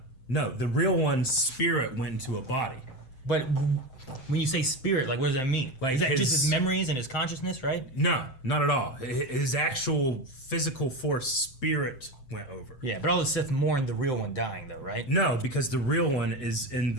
the real one's spirit went into a body. But when you say spirit, like what does that mean? Like is that just his memories and his consciousness, right? No, not at all. His actual physical force spirit went over. Yeah, but all the Sith mourned the real one dying though, right? No, because the real one is in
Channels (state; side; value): late; right; 7.7 ms